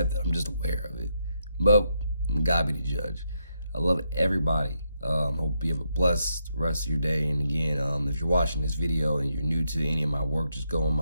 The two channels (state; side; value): inverted; both; correlation -0.81